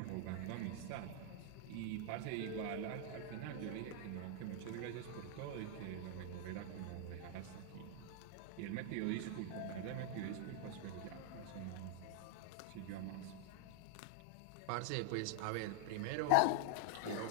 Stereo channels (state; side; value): different; both; correlation 0.00